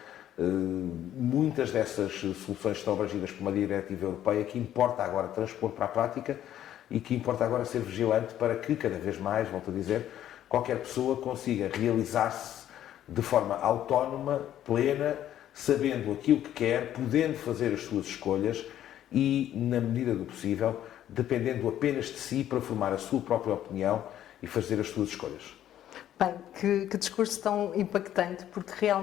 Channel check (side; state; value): right; quieter; 11.6 dB